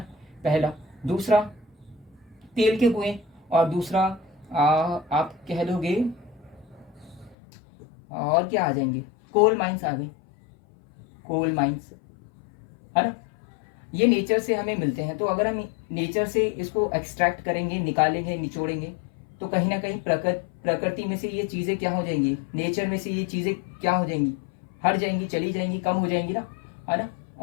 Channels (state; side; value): drops out; right; at 7.4 s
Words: पहला। दूसरा तेल के कुएं, और दूसरा आप कह लोगे और क्या आ जाएंगे, कोल माइंस आ गई, कोल माइंस, है ना। ये नेचर से हमें मिलते हैं। तो अगर हम नेचर से इसको एक्सट्रैक्ट करेंगे, निकालेंगे, निचोड़ेंगे, तो कहीं ना कहीं प्रकृति में से ये चीजें क्या हो जाएंगी, नेचर में से ये चीजें क्या हो जाएंगी, हट जाएंगी, चली जाएंगी, कम हो जाएंगी ना, है ना।